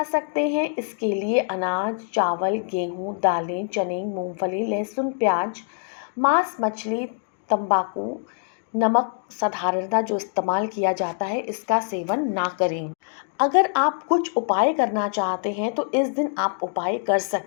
सकते हैं, इसके लिए अनाज, चावल, गेहूँ, दालें, चने, मूंगफली, लहसुन, प्याज, मांस, मछली, तंबाकू, नमक साधारणतः जो इस्तेमाल किया जाता है इसका सेवन ना करें। अगर आप कुछ उपाय करना चाहते हैं तो इस दिन आप उपाय कर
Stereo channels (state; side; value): silent; right; digital silence